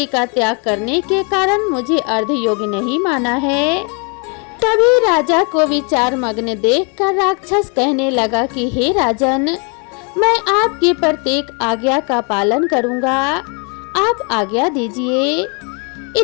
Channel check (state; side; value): quieter; right; 35.9 dB